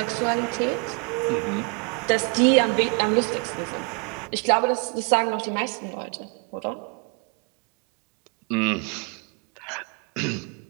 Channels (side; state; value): left; quieter; 33.2 dB